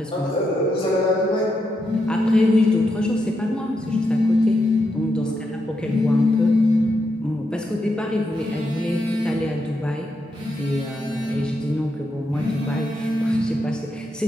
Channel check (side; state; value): both; normal; correlation 0.83